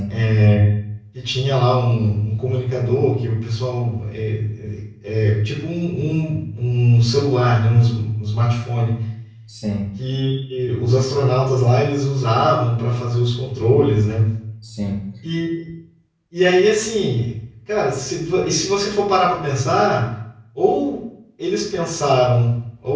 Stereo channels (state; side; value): identical; both; correlation 1.00